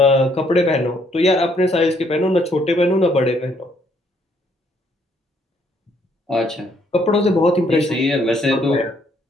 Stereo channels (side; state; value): both; normal; correlation 0.68